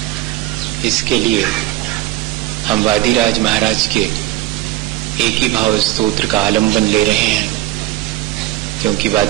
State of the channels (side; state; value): left; quieter; 16.0 dB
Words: इसके लिए हम वादिराज महाराज के एक ही भाव स्तोत्र का आलंबन ले रहे हैं, क्योंकि